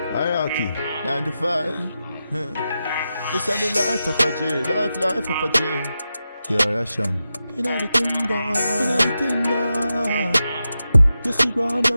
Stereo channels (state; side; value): inverted; both; correlation -0.90